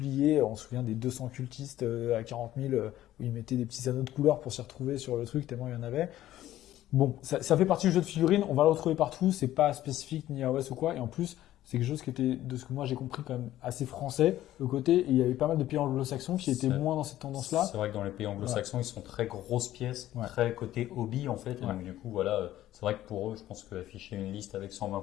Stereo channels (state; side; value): quieter; right; 13.8 dB